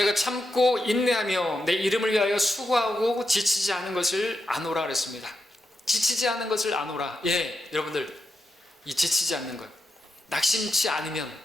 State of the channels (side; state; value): both; normal; correlation 0.85